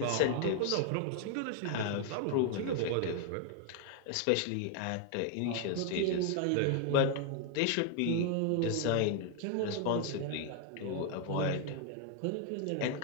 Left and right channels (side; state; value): both; different; correlation 0.00